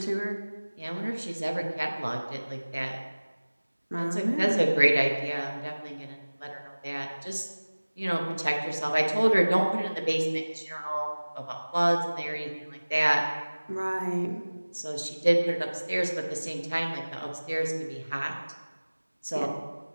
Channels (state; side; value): inverted; both; correlation -1.00